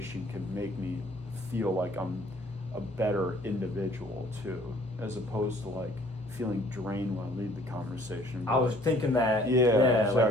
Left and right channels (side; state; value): both; normal; correlation 0.57